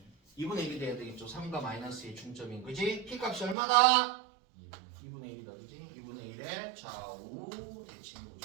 2분의 1이 돼야 되겠죠. 3과 마이너스의 중점인 그지? p값이 얼마다? 2분의 1이다. 그지? 2분의 1의 좌우 대칭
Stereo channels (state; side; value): drops out; left; at 3.6 s